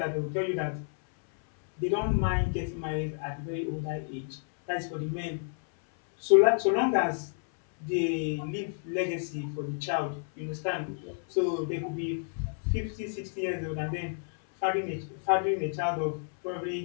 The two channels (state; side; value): silent; right; 58 dB below the other